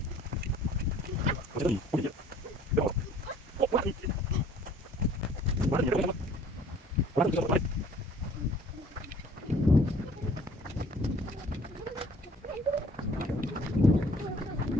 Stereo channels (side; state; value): both; normal; correlation 0.54